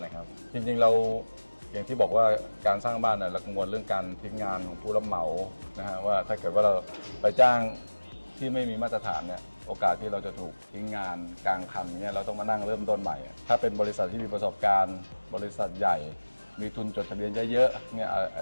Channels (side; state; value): both; inverted; correlation -1.00